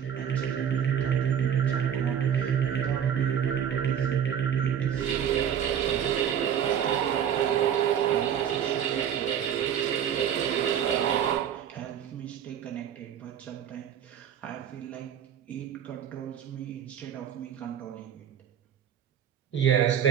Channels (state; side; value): quieter; left; 9.0 dB